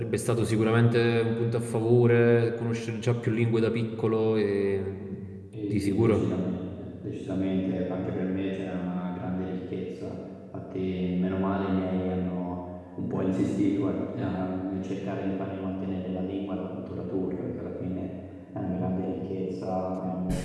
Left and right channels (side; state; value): both; identical; correlation 1.00